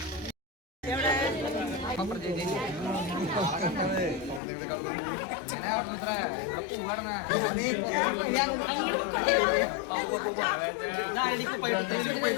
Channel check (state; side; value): drops out; right; at 4.4 s